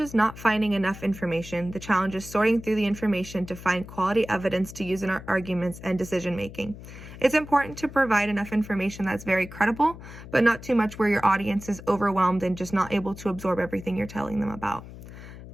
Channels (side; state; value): left; noise; hum, 14 dB below the sound